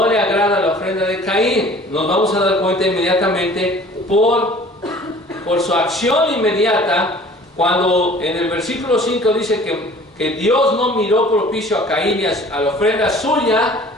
le agrada la ofrenda de Caín? Nos vamos a dar cuenta inmediatamente por su acción inmediata, cuando en el versículo 5 dice que Dios no miró propicio a Caín y a la ofrenda suya.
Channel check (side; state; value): both; normal; correlation 0.49